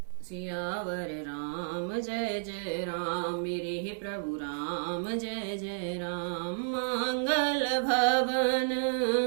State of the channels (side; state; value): left; silent; digital silence